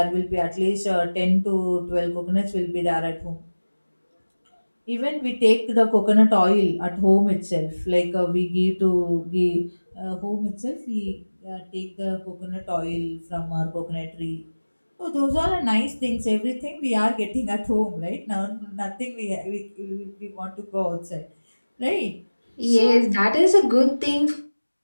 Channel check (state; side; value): inverted; both; correlation -1.00